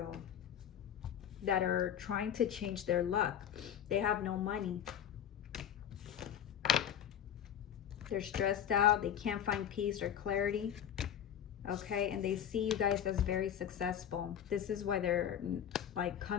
that are trying to change their luck. They have no money. They're stressed out. They can't find peace or clarity. Okay, and they see you guys as very successful. This is why they're like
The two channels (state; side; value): quieter; right; 9.5 dB